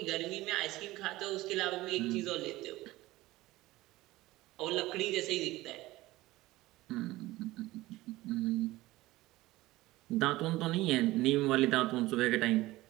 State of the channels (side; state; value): left; quieter; 18.2 dB